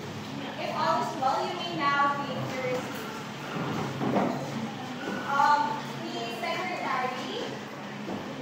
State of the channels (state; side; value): identical; both; correlation 1.00